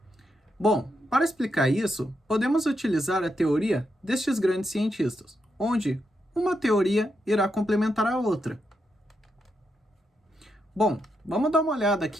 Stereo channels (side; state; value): both; normal; correlation 0.82